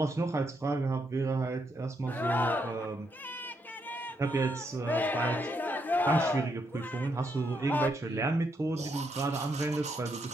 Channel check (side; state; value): both; normal; correlation 0.78